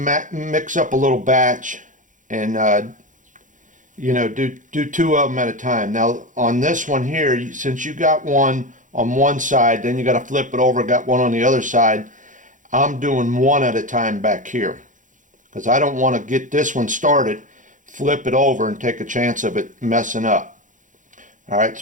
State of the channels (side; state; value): left; late; 0.37 ms